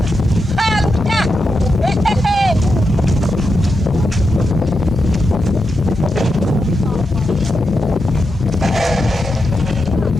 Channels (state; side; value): normal; both; correlation 0.87